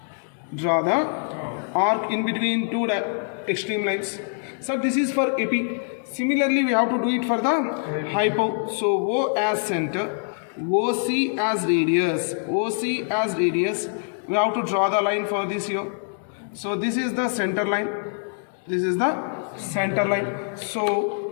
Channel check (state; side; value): silent; right; digital silence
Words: Draw the arc in between two extreme lines. So this is for AP. Similarly, we have to do it for the hypo. So O as center, OC as radius, OC as radius. We have to draw the line for this here. So this is the center line. This is the center line. So